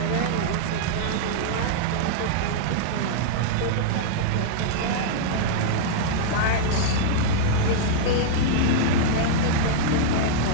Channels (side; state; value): both; different; correlation -0.02